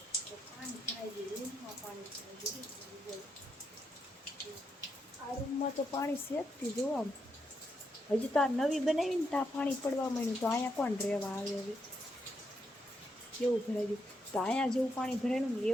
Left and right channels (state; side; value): normal; both; correlation 0.80